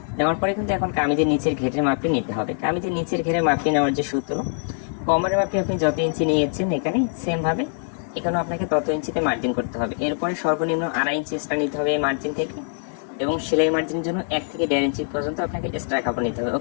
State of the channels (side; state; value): right; silent; digital silence